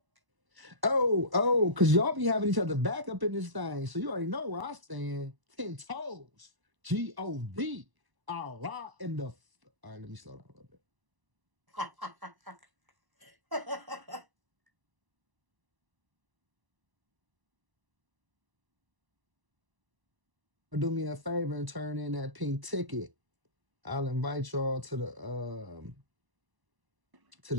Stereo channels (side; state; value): left; late; 1.0 ms